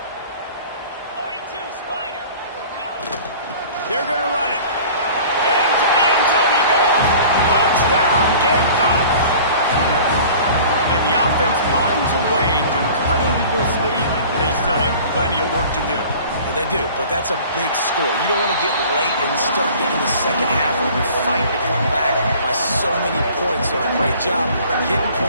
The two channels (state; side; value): inverted; both; correlation -0.45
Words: 42, Spider. They're going to run it. Into the end zone he goes. Touchdown, Gamecocks. And the offense finds a way to cut into this lead, but they still have plenty of work to do. They do, but that's a big score. You don't want to get late and start getting the second half when you're fighting to come back by so many points. So great job getting